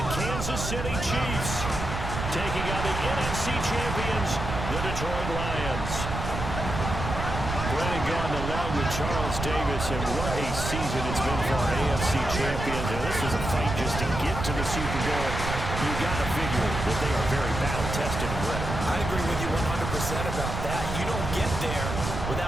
Kansas City Chiefs taking on the NFC champions, the Detroit Lions. Brennan gone along with Charles Davis, and what a season it's been for our AFC champions. And this is a fight just to get to the Super Bowl. You got to figure that they are very battle-tested and ready. I agree with you 100% about that. You don't get there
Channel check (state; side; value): noise; right; rumble, 4 dB below the sound